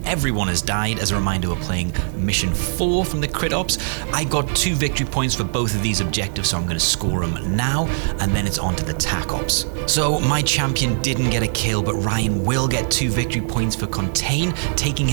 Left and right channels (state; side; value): silent; left; digital silence